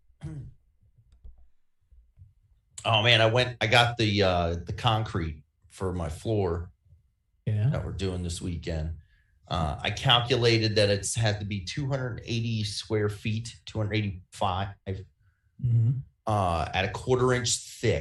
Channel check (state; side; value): identical; both; correlation 1.00